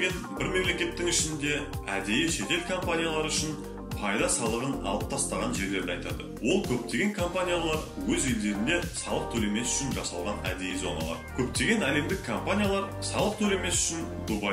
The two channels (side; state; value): both; identical; correlation 1.00